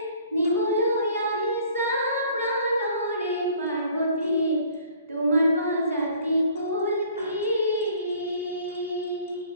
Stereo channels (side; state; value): both; inverted; correlation -0.54